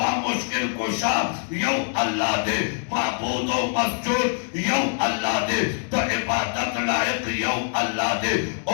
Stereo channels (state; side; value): silent; right; 56 dB below the other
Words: मुश्किल कुशा यौ अल्लाह दे माबूद व मस्जूद यौ अल्लाह दे तो इबादत लाइक यौ अल्लाह दे।